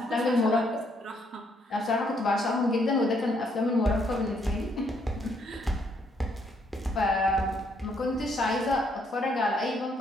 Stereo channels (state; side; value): normal; both; correlation 0.71